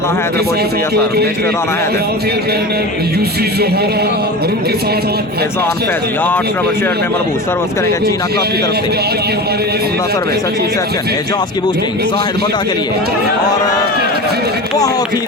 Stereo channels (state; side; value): normal; both; correlation 0.30